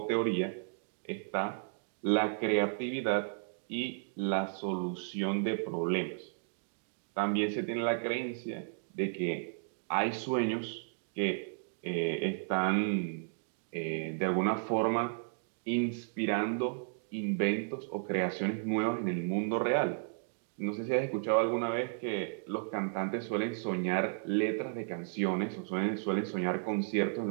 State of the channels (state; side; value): silent; left; digital silence